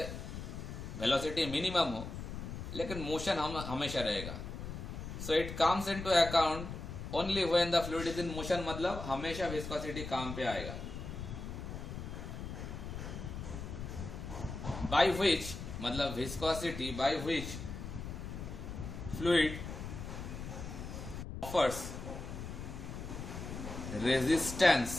वेलोसिटी मिनिमम हो लेकिन मोशन हम हमेशा रहेगा. So it comes into account only when the fluid is in motion, मतलब हमेशा विस्कोसिटी काम पे आएगा. बाय विच, मतलब viscosity by which fluid offers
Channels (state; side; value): noise; left; rumble, 7 dB below the sound